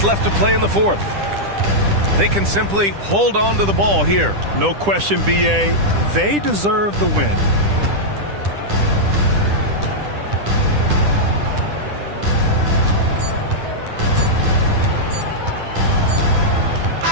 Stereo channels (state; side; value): late; left; 10 ms